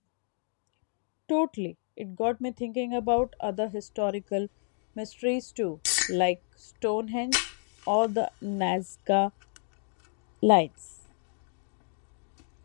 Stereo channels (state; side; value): silent; right; digital silence